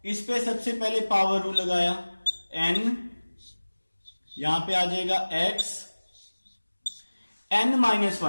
इस पे सबसे पहले पावर रूल लगाया, n यहां पे आ जाएगा x n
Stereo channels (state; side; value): inverted; both; correlation -1.00